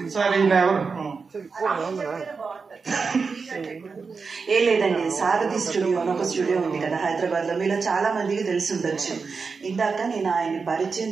సార్ ఈయన ఎవరు? ఏ లేదండి, సారథి స్టూడియో అని ఒక స్టూడియో ఉంది కదా హైదరాబాద్ లో, మీలో చాలా మందికి తెలిసి ఉండొచ్చు. ఇందాక నేను ఆయన్ని పరిచయం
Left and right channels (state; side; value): quieter; left; 4.9 dB